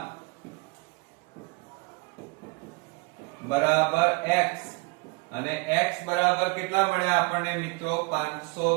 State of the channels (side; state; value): left; quieter; 28.8 dB